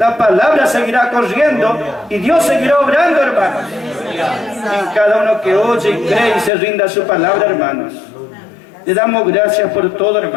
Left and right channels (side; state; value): right; drops out; at 6.5 s